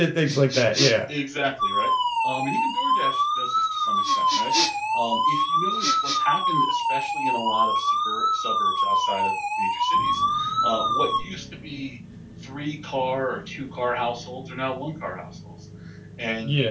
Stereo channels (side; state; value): both; identical; correlation 1.00